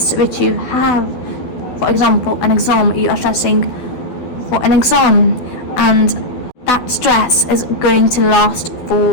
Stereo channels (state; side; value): late; right; 12 ms